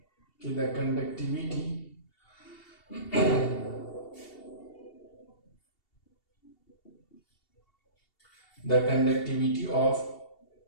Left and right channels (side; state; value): right; late; 2.7 ms